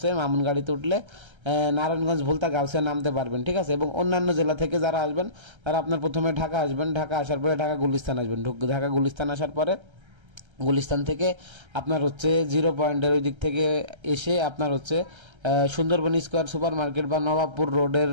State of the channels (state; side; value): late; left; 1.3 ms